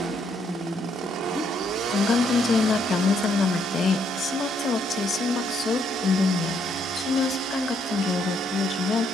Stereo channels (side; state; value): both; normal; correlation 0.72